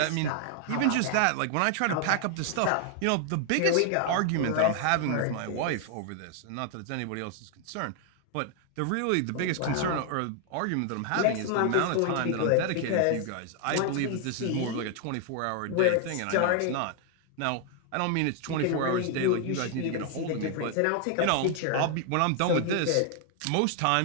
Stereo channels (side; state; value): both; different; correlation 0.00